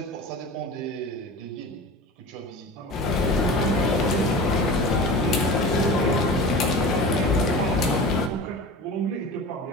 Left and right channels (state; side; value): normal; both; correlation 0.34